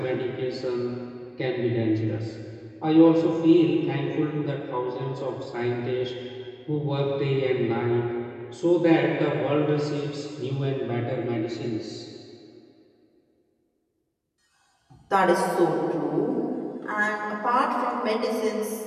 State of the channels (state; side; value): identical; both; correlation 1.00